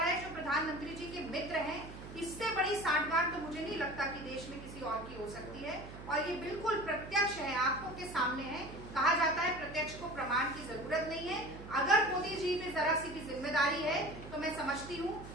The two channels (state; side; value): noise; right; hum, 13 dB below the sound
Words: है जो प्रधानमंत्री जी के मित्र हैं। इससे बड़ी सांठगांठ तो मुझे नहीं लगता कि देश में किसी और की हो सकती है। और ये बिल्कुल प्रत्यक्ष है, आंखों के सामने है। कहा जाता है प्रत्यक्ष को प्रमाण की जरूरत नहीं है। अगर मोदी जी में जरा सी भी जिम्मेदारी है तो मैं समझती हूँ